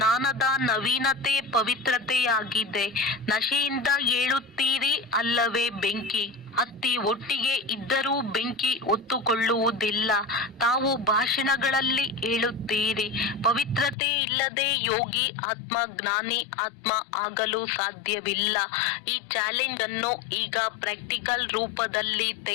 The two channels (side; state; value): right; drops out; at 14.0 s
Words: ನವೀನತೆ ಪವಿತ್ರತೆಯಾಗಿದೆ. ನಶೆಯಿಂದ ಏಳುತ್ತೀರಿ ಅಲ್ಲವೇ? ಬೆಂಕಿ ಹತ್ತಿ ಒಟ್ಟಿಗೆ ಇದ್ದರೂ ಬೆಂಕಿ ಹೊತ್ತುಕೊಳ್ಳುವುದಿಲ್ಲ. ತಾವು ಭಾಷಣಗಳಲ್ಲಿ ಹೇಳುತ್ತೀರಿ, ಪವಿತ್ರತೆ ಇಲ್ಲದೆ ಯೋಗಿ ಆತ್ಮ ಜ್ಞಾನಿ ಆತ್ಮ ಆಗಲು ಸಾಧ್ಯವಿಲ್ಲ. ಈ ಚಾಲೆಂಜ್ ಅನ್ನು ಈಗ ಪ್ರಾಕ್ಟಿಕಲ್ ರೂಪದಲ್ಲಿ